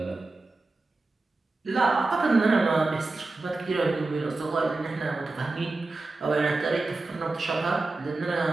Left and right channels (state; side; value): quieter; left; 3.4 dB